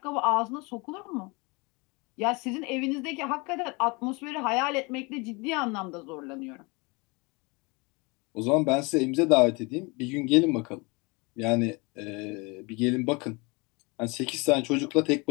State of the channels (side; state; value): right; quieter; 27.9 dB